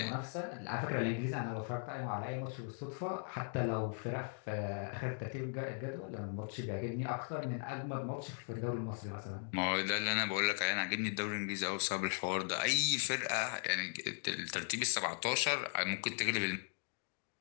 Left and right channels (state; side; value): silent; right; 52 dB below the other